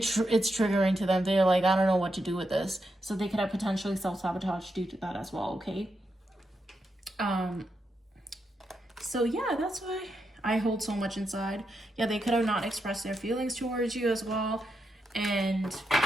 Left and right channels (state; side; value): normal; both; correlation 0.84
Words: triggering to them. They're like, I don't know what to do with this. So they could have potentially self-sabotage due to that as well, okay? So yeah, that's why I hold so much inside. Yeah, they could have not expressed their feelings towards you as well. And